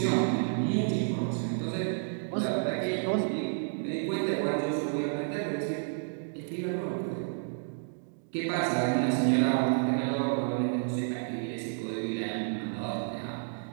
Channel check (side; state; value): left; silent; digital silence